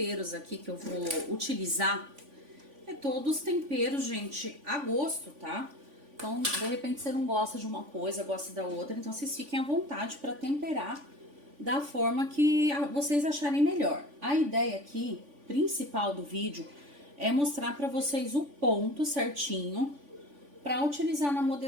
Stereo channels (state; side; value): late; left; 3.5 ms